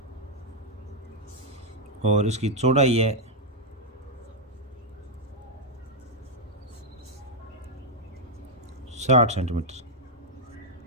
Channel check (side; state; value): both; normal; correlation -0.01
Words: और इसकी चौड़ाई है 60 सेंटीमीटर।